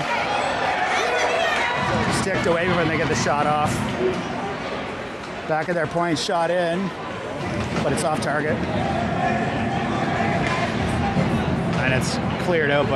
Sticked away when they get the shot off. Back of their point, shot in, but it's off target. And it's cleared out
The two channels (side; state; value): both; identical; correlation 1.00